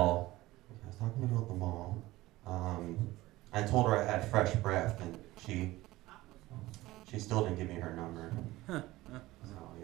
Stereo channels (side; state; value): left; quieter; 18.1 dB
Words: I told her I had fresh breath, and she still didn't give me her number. So,